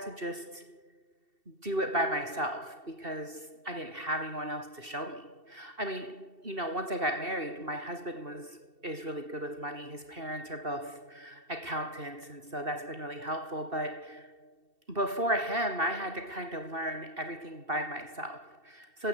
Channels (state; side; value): late; left; 2.7 ms